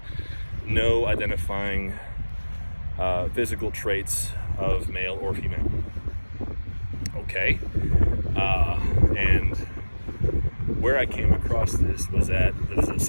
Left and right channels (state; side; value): inverted; both; correlation -1.00